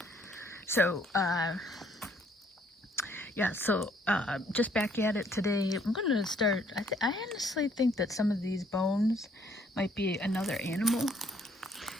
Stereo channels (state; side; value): normal; both; correlation 0.65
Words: So just back at it today. I'm gonna start. I honestly think that some of these bones might be another animal,